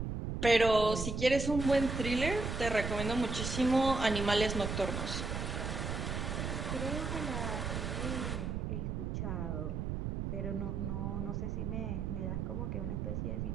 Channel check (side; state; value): right; noise; rumble, 2 dB below the sound